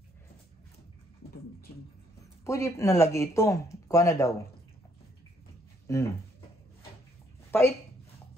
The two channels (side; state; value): both; normal; correlation 0.69